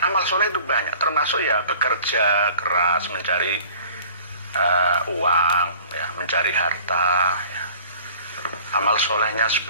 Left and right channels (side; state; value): both; inverted; correlation -0.48